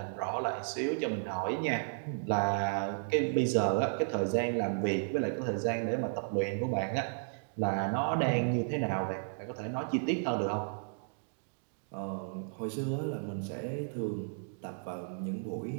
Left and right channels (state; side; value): silent; left; digital silence